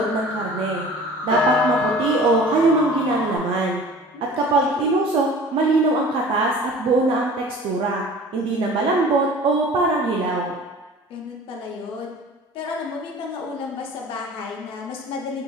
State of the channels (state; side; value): normal; both; correlation 0.44